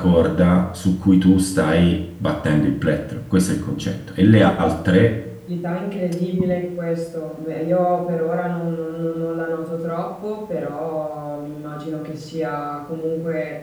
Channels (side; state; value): both; identical; correlation 1.00